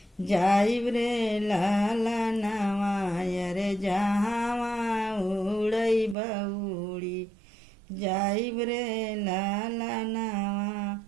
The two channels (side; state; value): left; drops out; at 6.2 s